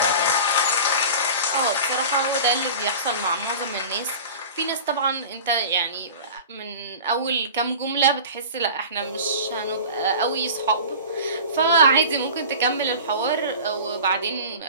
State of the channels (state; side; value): inverted; both; correlation -0.37